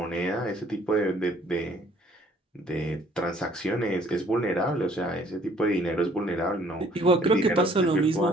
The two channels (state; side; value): normal; both; correlation 0.59